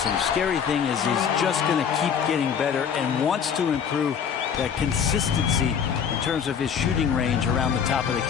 Scary thing is he's just going to keep getting better and wants to improve that consistency in terms of his shooting range around the top of the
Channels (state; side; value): quieter; right; 7.5 dB